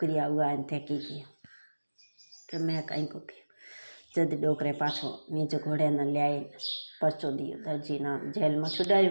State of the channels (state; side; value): inverted; both; correlation -1.00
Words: हुआ थे की किया तो मैं कहीं को किया। जद डोकरे पाछो नीचे घोड़े ने लियाई परचो दियो दर्जी ना जेल में छुड़ायो।